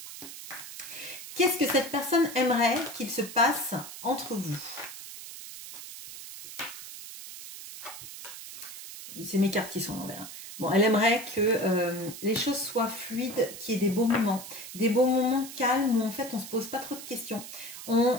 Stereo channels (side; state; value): right; noise; hiss, 12 dB below the sound